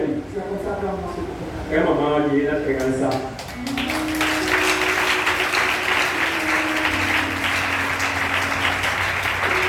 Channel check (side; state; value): both; identical; correlation 1.00